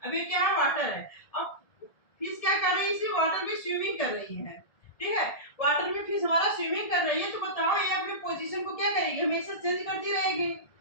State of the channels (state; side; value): late; right; 1.7 ms